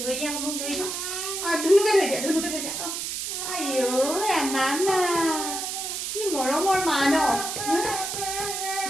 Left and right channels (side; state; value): right; noise; hiss, 4 dB below the sound